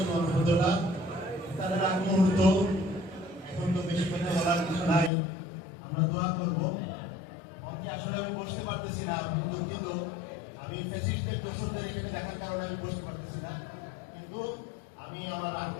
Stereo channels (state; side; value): drops out; right; at 5.1 s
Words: ওয়া রাহমাতুল্লাহ। তার আগ মুহূর্ত এখন তো বেশি কথা বলার কিছু নাই, আমরা দোয়া করব। মঞ্চে আসলে আমি বসতে পারতেছি না, কিন্তু আমি ফেসিস্টদের দোষরদের এখানে দেখার কারণে আমি বসতে পারতেছি না, কিন্তু আমি আমার